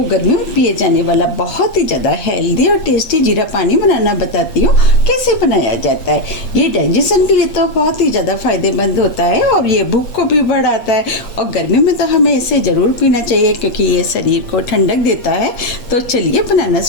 गर्मियों में पिए जाने वाला बहुत ही ज़्यादा हेल्दी और टेस्टी जीरा पानी बनाना बताती हूँ कैसे बनाया जाता है। ये डाइजेशन के लिए तो बहुत ही ज़्यादा फायदेमंद होता है और ये भूख को भी बढ़ाता है और गर्मी में तो हमें इसे ज़रूर पीना चाहिए क्योंकि ये शरीर को ठंडक देता है। तो चलिए बनाना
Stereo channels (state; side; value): late; right; 8.6 ms